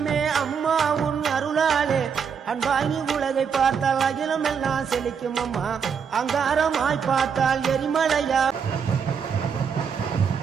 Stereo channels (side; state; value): left; quieter; 6.7 dB